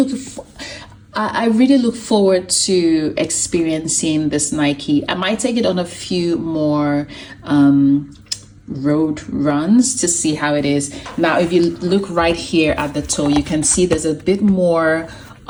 look forward to experiencing this Nike. I might take it on a few more road runs to see how it is. Now, if you look right here at the toe, you can see there's a bit more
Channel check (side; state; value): both; identical; correlation 1.00